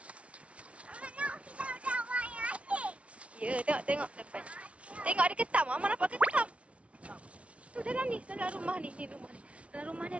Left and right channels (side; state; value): left; late; 0.062 ms